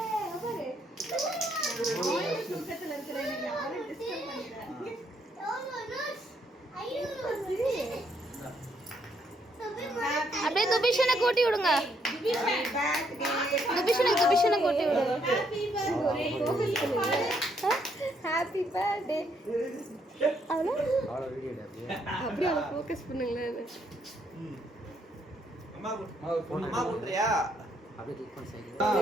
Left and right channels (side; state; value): both; normal; correlation 0.72